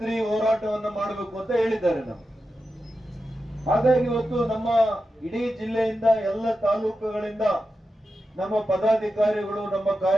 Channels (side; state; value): both; normal; correlation 0.90